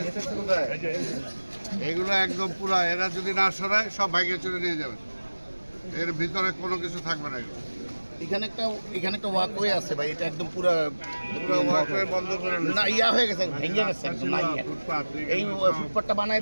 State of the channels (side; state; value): both; inverted; correlation -1.00